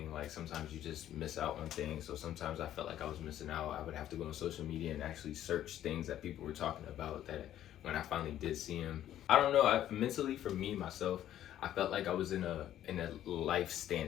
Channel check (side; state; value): right; quieter; 11.8 dB